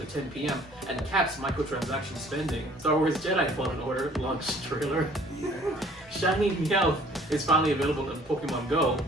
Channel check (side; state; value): both; normal; correlation 0.55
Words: 10 p.m. and caps microtransaction spending. Star Wars Jedi Fallen Order launch trailer. Yeah. Shiny Meowth is finally available in Pokemon Go.